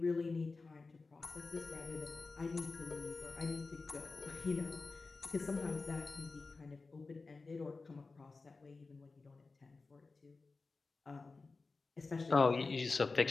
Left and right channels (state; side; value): quieter; right; 3.9 dB